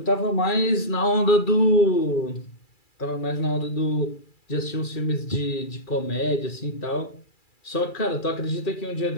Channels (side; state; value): right; late; 2.3 ms